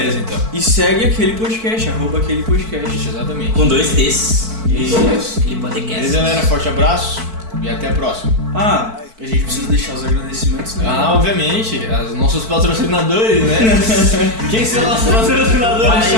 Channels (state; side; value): late; left; 4.5 ms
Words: então. E segue aquele podcast, arroba aquele podcast. Isso, exatamente. Com 2 T's. Isso. Aquele podcast. Beleza, galera? Forte abraço e até a próxima. Ah, a gente precisa deixar os agradecimentos, né? Ah, obviamente, os nossos patrocinadores, né? Quem são nossos patrocinadores?